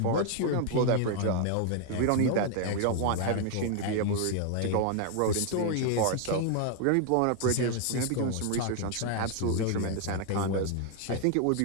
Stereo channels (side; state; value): both; different; correlation 0.00